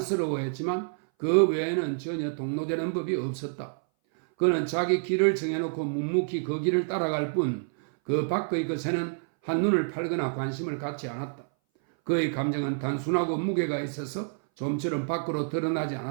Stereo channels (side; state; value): left; silent; 58 dB below the other